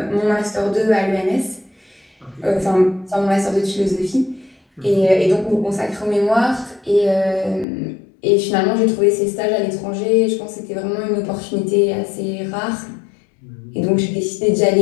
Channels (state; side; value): drops out; right; at 7.7 s